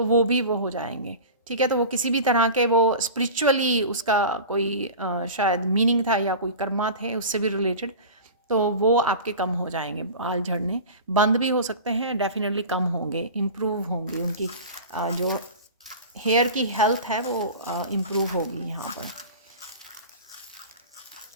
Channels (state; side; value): inverted; both; correlation -0.33